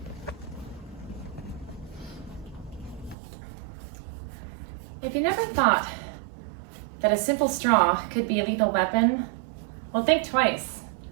If you never thought that a simple straw could be a lethal weapon, well, think twice.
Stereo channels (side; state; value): left; drops out; at 3.2 s